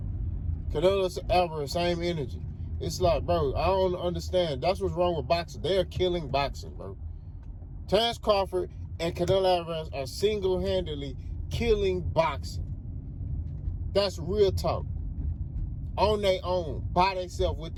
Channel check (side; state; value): both; identical; correlation 1.00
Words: Canelo Álvarez, same energy. It's like, bro, I don't understand. That's what's wrong with boxing. They're killing boxing, bro. Terrence Crawford and Canelo Álvarez are single-handedly killing boxing. That's real talk. On their own, by themselves with